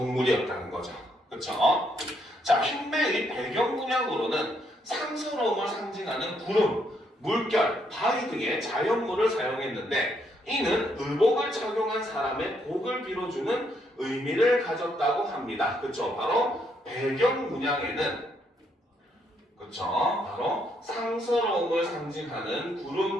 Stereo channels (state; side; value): normal; both; correlation 0.74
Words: 거죠. 그렇죠? 자, 흉배의 배경 문양으로는 상서로움을 상징하는 구름, 물결, 바위 등의 자연물을 사용했는데 이는 의복을 착용한 사람의 복을 빌어주는 의미를 가졌다고 합니다. 그렇죠? 바로 배경 문양에는 그렇죠? 바로 상서로움을 상징하는